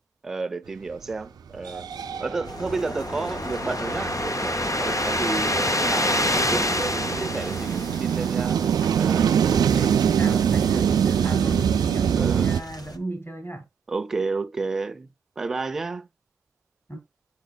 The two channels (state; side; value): quieter; left; 4.5 dB